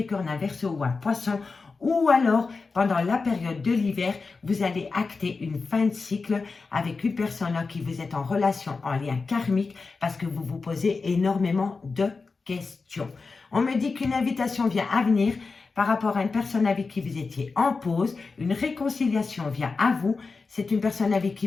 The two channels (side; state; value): right; quieter; 4.3 dB